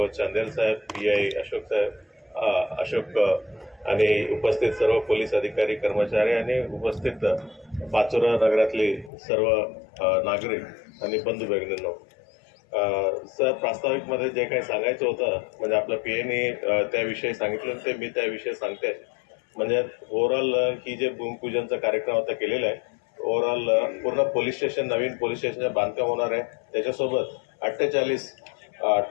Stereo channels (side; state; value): right; drops out; at 9.1 s